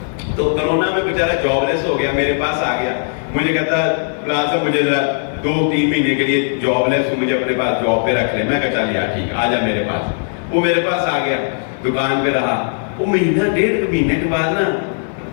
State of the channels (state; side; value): silent; right; digital silence